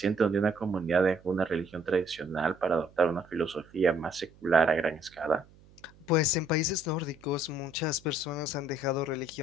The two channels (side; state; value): right; noise; hum, 26 dB below the sound